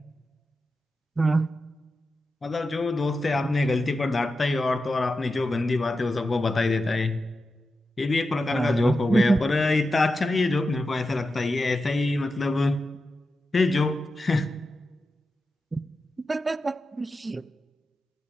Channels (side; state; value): both; normal; correlation 0.90